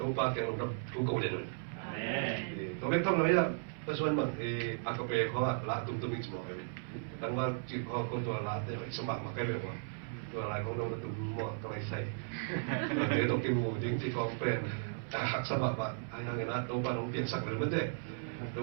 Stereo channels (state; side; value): silent; left; 54 dB below the other